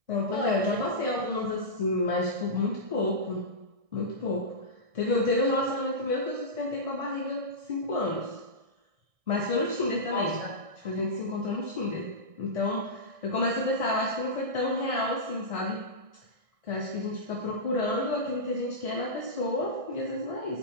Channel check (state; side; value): late; left; 1.6 ms